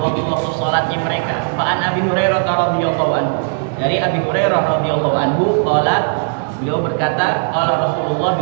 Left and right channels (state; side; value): silent; left; digital silence